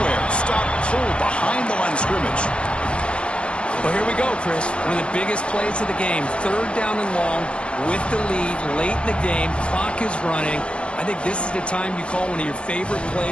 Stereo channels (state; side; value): late; right; 0.057 ms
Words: Stop pulled behind the line of scrimmage. Well, here we go, Chris. One of the biggest plays of the game. Third down and long with the lead late in the game. Clock is running. I think this is the time you call one of your favorite